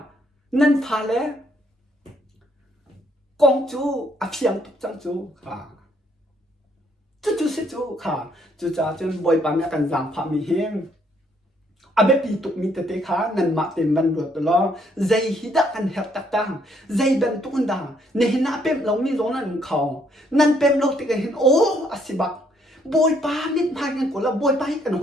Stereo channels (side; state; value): both; normal; correlation 0.69